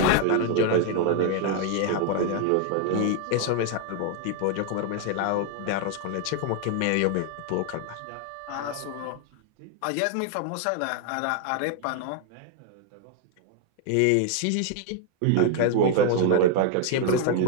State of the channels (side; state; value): both; different; correlation 0.00